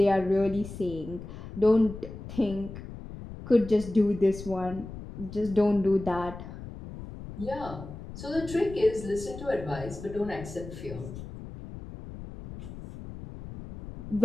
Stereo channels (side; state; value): left; noise; rumble, 12 dB below the sound